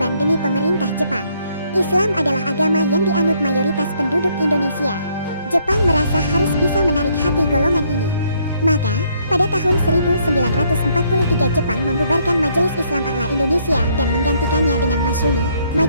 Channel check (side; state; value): both; inverted; correlation -0.68